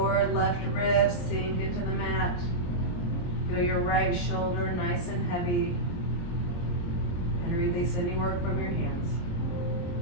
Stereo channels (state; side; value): late; right; 23 ms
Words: left ribs sink into the mat. Feel your right shoulder nice and heavy. And release any work from your hands.